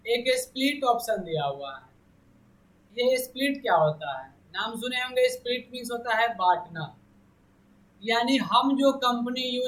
एक स्प्लिट ऑप्शन दिया हुआ है। ये स्प्लिट क्या होता है? नाम सुने होंगे, स्प्लिट मीन्स होता है बांटना। यानी हम जो कंपनी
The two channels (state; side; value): identical; both; correlation 1.00